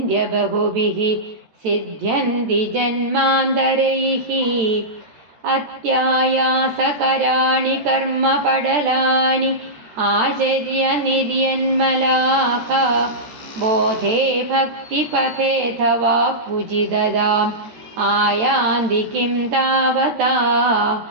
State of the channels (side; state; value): left; late; 14 ms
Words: ബഹുഭിഃ സിദ്ധ്യന്തി ജന്മാന്തരൈഃ. അത്യായാസകരാണി കർമ്മ പടലാനി ആചര്യ നിര്യന്മലാഹ ബോധേ ഭക്തിപഥേധവാപ്യുജിതദാം ആയാന്തി കിം താവതാ.